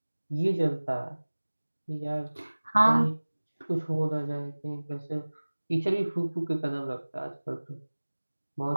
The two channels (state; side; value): inverted; both; correlation -1.00